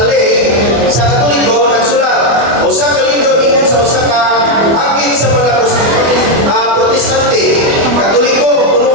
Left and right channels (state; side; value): late; left; 24 ms